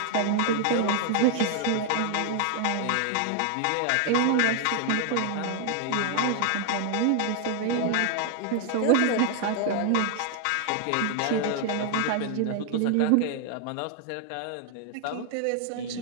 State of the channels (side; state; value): both; different; correlation 0.00